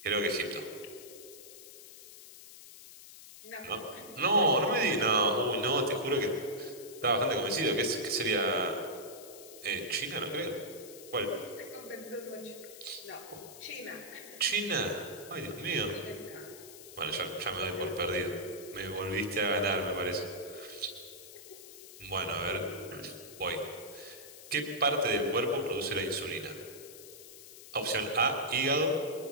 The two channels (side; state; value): left; noise; hiss, 16 dB below the sound